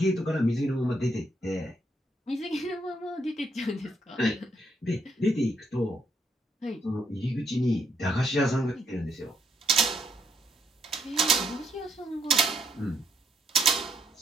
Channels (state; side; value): normal; both; correlation 0.74